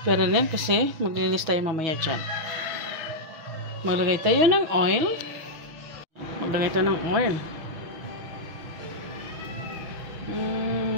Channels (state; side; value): late; left; 6.1 ms